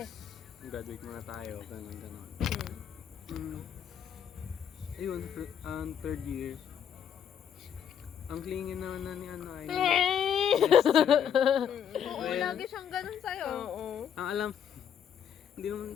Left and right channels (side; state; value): right; quieter; 8.5 dB